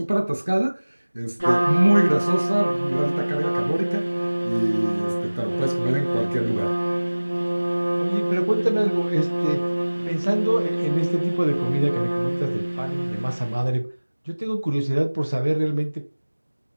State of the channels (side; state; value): both; inverted; correlation -1.00